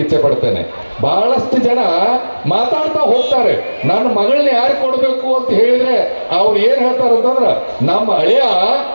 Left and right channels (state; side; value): inverted; both; correlation -1.00